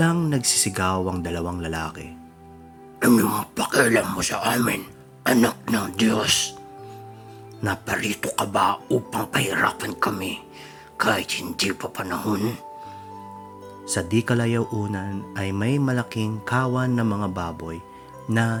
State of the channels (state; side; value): identical; both; correlation 1.00